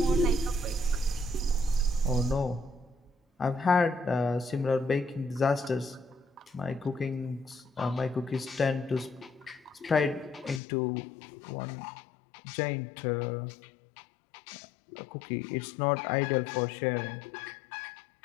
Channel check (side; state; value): right; drops out; at 10.6 s